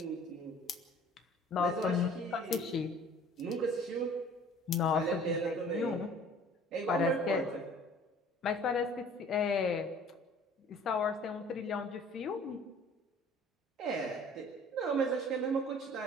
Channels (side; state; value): both; normal; correlation 0.50